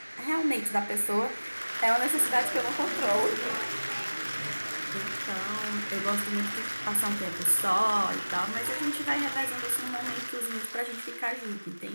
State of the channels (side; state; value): both; inverted; correlation -1.00